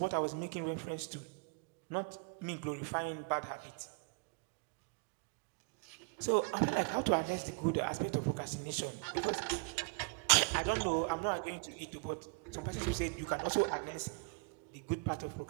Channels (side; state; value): left; quieter; 36.5 dB